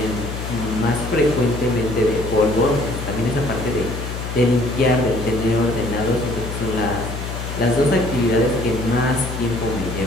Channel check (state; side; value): noise; left; hum, 6 dB below the sound